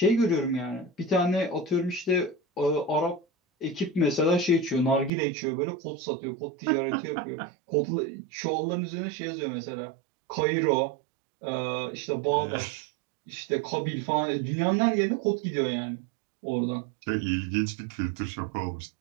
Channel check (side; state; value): left; drops out; at 5.1 s